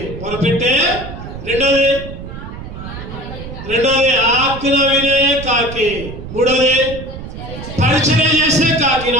మొరపెట్టే. రెండోది ఆజ్ఞ వినే కాకి. మూడోది పరిచయం చేసే కాకి.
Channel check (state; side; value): noise; right; rumble, 10 dB below the sound